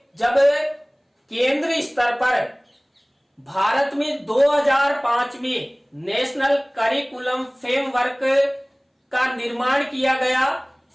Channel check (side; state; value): both; identical; correlation 1.00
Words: जब केंद्र स्तर पर भारत में 2005 में नेशनल करिकुलम फ्रेमवर्क का निर्माण किया गया,